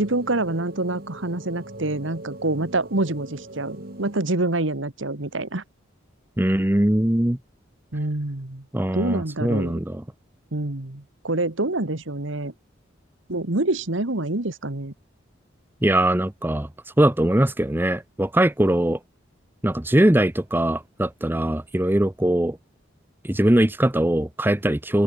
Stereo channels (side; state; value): both; normal; correlation 0.72